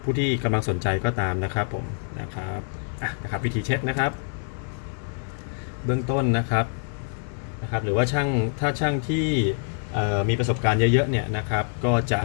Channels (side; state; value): right; silent; digital silence